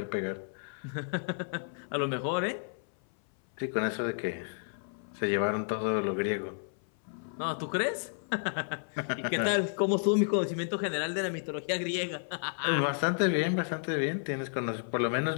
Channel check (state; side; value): silent; right; 55 dB below the other